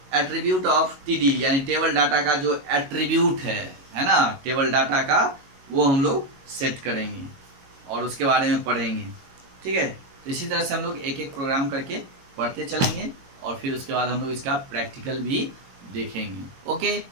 एट्रीब्यूट ऑफ टीडी यानी टेबल डाटा का जो एट्रीब्यूट है ना, टेबल डाटा का, वो हम लोग सेट करेंगे और उसके बारे में पढ़ेंगे, ठीक है। तो इसी तरह से हम लोग एक एक प्रोग्राम करके पढ़ते चलेंगे और फिर उसके बाद हम लोग इसका प्रैक्टिकल भी देखेंगे, okay.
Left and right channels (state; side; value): late; left; 22 ms